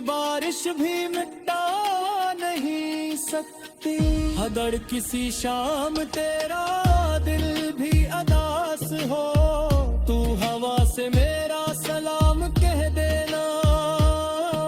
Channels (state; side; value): identical; both; correlation 1.00